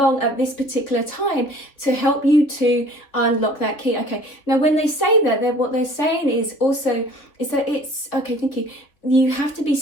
at this particular time to help you to unlock that key. Okay, now when they say that, what they're saying is also is that it's, okay, thank you, you have to be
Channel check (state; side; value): late; right; 3.5 ms